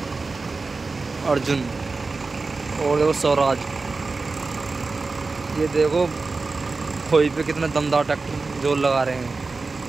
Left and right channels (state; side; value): quieter; left; 3.9 dB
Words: अर्जुन और देखो स्वराज। ये देखो खोई पे कितना दमदार ट्रैक्टर जोर लगा रहे हैं